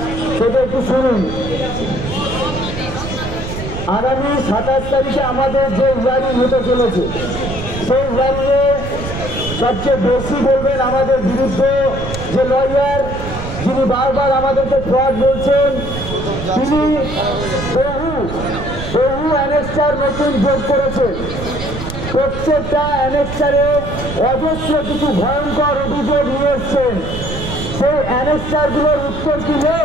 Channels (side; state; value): right; noise; rumble, 7 dB below the sound